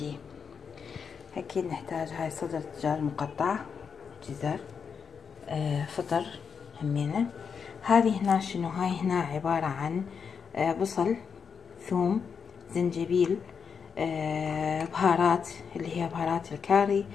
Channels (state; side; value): quieter; right; 6.3 dB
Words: اكيد نحتاج هاي صدر دجاج مقطع، جزر، فطر همينة. هذه هنا شنو؟ هاي هنا عبارة عن بصل، ثوم، زنجبيل، بهارات اللي هي بهارات الكاري